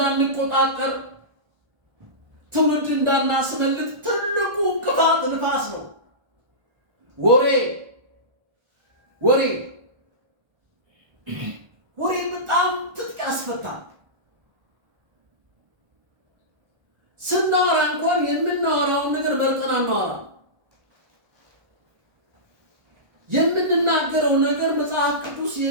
ትውልድ እንዳናስመልጥ ትልቁ እንቅፋት ንፋስ ነው። ወሬ ወሬ ወሬ በጣም ትጥቅ ያስፈታል። ስናወራ እንኳን የምናወራውን ነገር መርጠን አናወራ። የምንናገረው ነገር መጽሐፍ ቅዱስ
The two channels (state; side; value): late; left; 1.3 ms